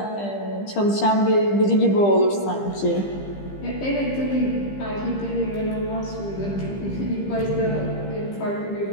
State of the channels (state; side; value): late; right; 15 ms